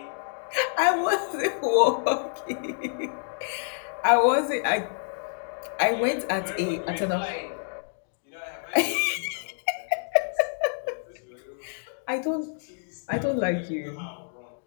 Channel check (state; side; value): silent; right; digital silence